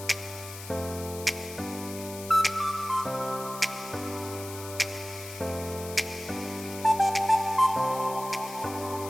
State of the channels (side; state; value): left; noise; hiss, 12 dB below the sound